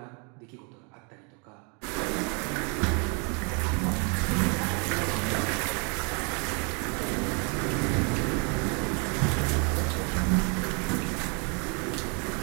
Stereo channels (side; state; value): left; quieter; 34.8 dB